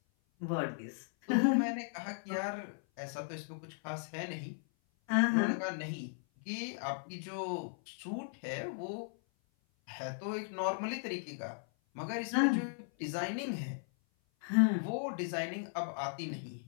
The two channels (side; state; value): right; silent; 53 dB below the other